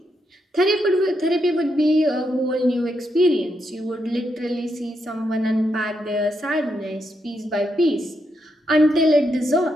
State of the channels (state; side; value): normal; both; correlation 0.81